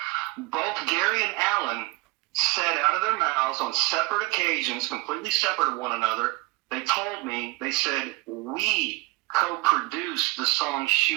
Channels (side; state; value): left; quieter; 23.8 dB